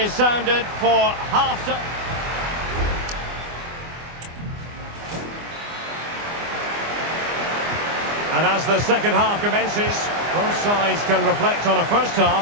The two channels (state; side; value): late; left; 24 ms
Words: sounded for half-time. And as the second half commences, both sides can reflect on a first half